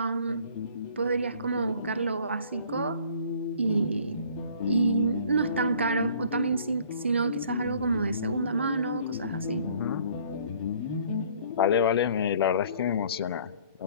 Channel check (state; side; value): inverted; both; correlation -0.55